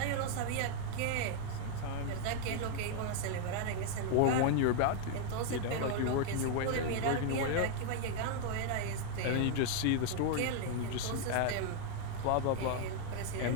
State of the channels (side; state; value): both; different; correlation 0.00